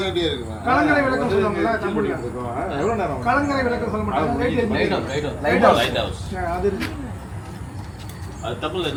இருக்குமா? கலங்கரை விளக்கம் சொல்லுவாங்கல்ல கம்பெனில. எவ்வளோ நேரம் கலங்கரை விளக்கம் சொல்ல மாட்டாங்க. Light house. அது இருக்கு. அது தமிழ்ல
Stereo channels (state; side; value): identical; both; correlation 1.00